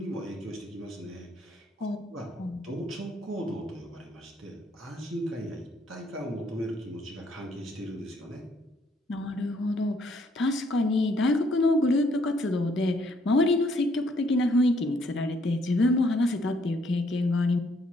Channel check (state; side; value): normal; both; correlation 0.68